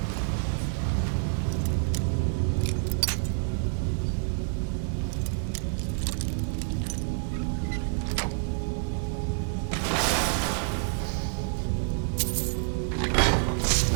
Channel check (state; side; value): silent; left; 59 dB below the other